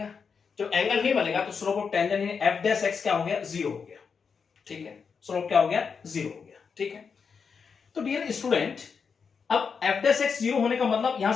जब एंगल नहीं बनेगा तो स्लोप ऑफ टेंजेंट यानी एफ डैश एक्स क्या हो गया 0 हो गया, ठीक है। स्लोप क्या हो गया 0 हो गया, ठीक है। तो डियर स्टूडेंट अब एफ डैश एक्स 0 होने का मतलब यहां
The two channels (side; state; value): right; quieter; 5.8 dB